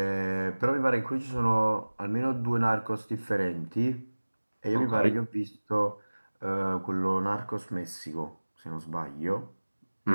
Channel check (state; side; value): inverted; both; correlation -1.00